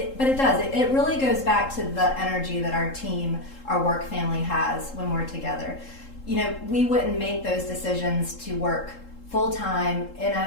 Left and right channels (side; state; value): right; late; 3.7 ms